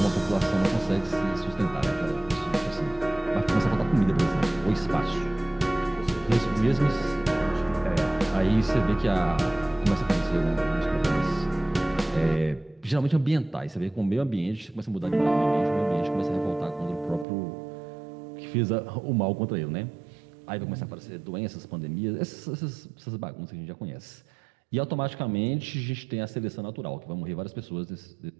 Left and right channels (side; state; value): left; drops out; at 17.2 s